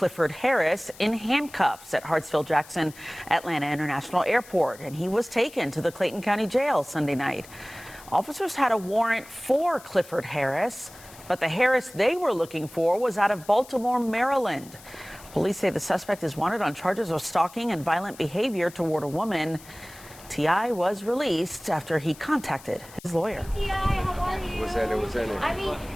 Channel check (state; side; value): noise; left; hiss, 20 dB below the sound